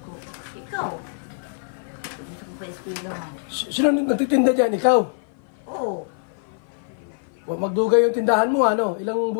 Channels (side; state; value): right; silent; 56 dB below the other